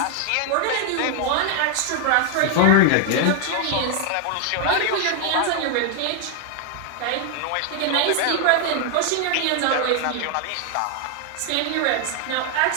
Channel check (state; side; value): different; both; correlation 0.00